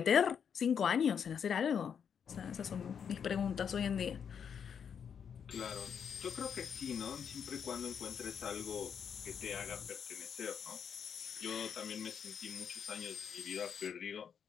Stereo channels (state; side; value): quieter; right; 7.4 dB